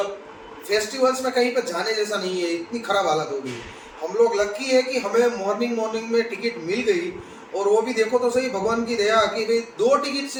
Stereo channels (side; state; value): both; identical; correlation 1.00